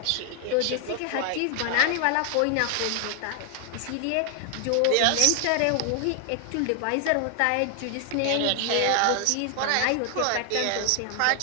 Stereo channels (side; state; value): both; different; correlation 0.00